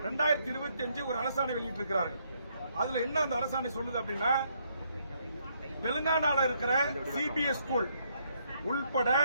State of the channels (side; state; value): both; inverted; correlation -0.72